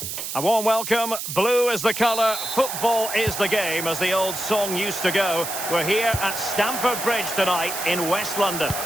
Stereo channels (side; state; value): right; noise; hiss, 6 dB below the sound